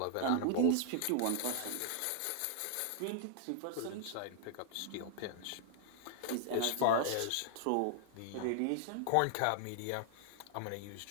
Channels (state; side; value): different; both; correlation 0.00